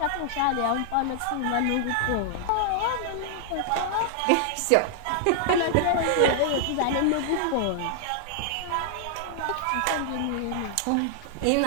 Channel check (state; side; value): different; both; correlation -0.01